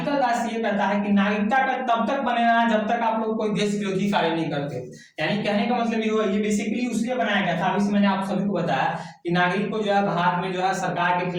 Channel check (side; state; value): both; identical; correlation 1.00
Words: 10 ये कहता है कि नागरिकता का तब तक बनेगा जब तक आप लोग कोई देश विरोधी कार्य नहीं करते हो। यानी कहने का मतलब ये हुआ, ये बेसिकली उसलिए बनाया गया था, अभी से मैंने आप सभी को बताया कि नागरिक को जो है भारत में जो है सरकार के